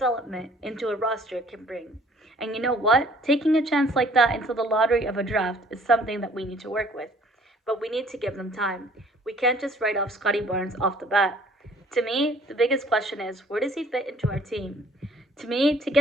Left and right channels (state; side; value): normal; both; correlation 0.57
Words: into a roster can bring. And you know what? Taking a chance like that into the lottery of a draft is something that we need to work with. But we need to give them time. We can't just write off Scottie Barnes off the bat. To me, the biggest question is, where does he fit into our team? To me, to